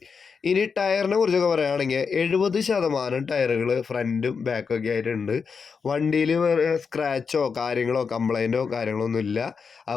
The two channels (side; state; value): right; quieter; 5.6 dB